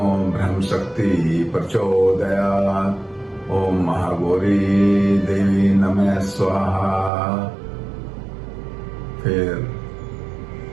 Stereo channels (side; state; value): left; drops out; at 7.1 s